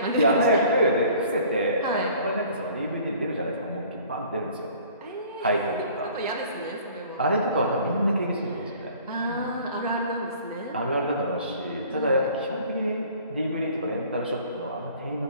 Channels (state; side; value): inverted; both; correlation -0.51